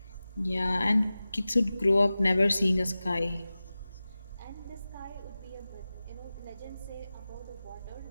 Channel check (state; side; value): inverted; both; correlation -0.96